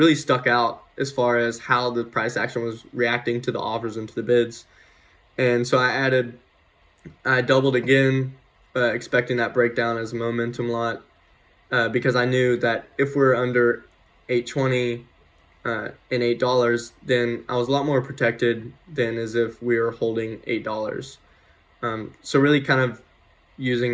stuck out as far as how the price action was reacting to the offers and to the bids. And so I doubled again, expecting that breakdown as a momentum lot, because I knew that if we're under 820 and $8, then I was a lot more protected than as if we were holding $8. So really kind of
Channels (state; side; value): identical; both; correlation 1.00